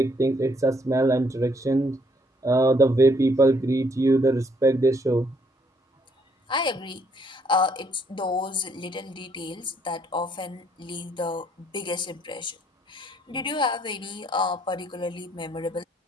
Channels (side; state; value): both; normal; correlation 0.68